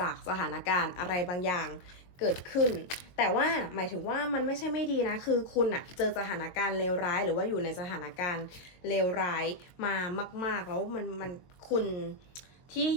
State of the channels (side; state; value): right; late; 22 ms